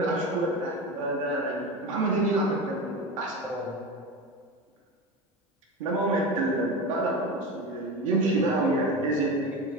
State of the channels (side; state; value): both; normal; correlation 0.25